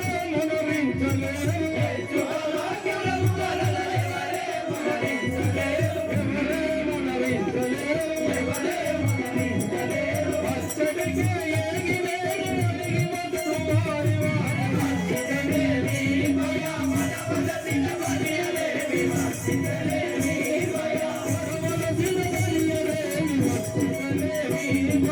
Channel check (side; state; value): both; identical; correlation 1.00